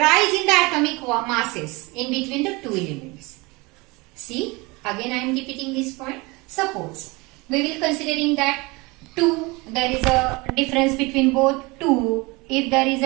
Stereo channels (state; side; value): quieter; left; 24.9 dB